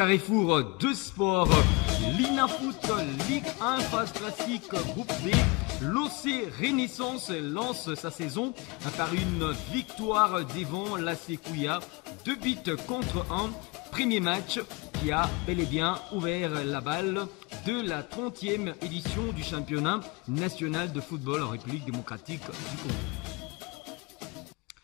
de sport, l'INAFoot Ligue 1 phase classique groupe B, l'OC Renaissance lance sa saison par une victoire devant l'AC Kouya, 2 buts contre 1. Premier match qui a bel et bien ouvert la balle de la 30e édition du championnat national de football en République démocratique du Congo.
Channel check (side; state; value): right; quieter; 26.5 dB